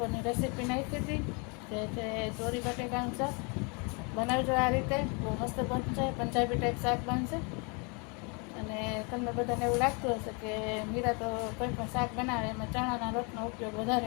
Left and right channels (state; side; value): quieter; right; 33.0 dB